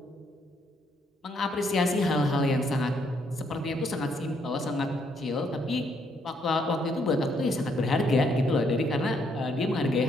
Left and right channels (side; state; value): both; normal; correlation 0.72